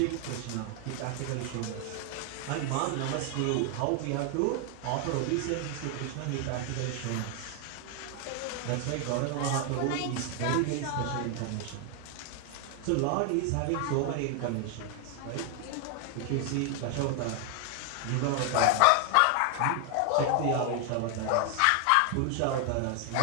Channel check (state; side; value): different; both; correlation 0.00